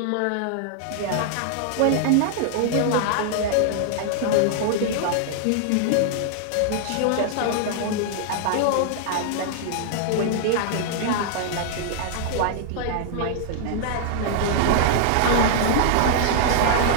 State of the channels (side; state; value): both; different; correlation -0.01